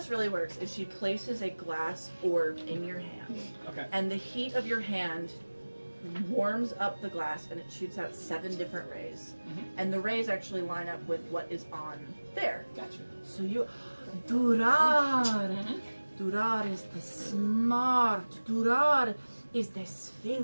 really works is she places a glass orb in your hand, Okay. and the heat of your hand warms up the glass, and it shoots out 7 different rays. And the rays actually line up with what is on there. Gotcha. So you, Durar. Durar is the smart. Durar is the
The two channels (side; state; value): both; inverted; correlation -1.00